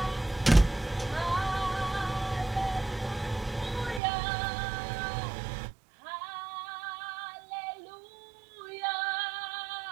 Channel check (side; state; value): left; drops out; at 4.0 s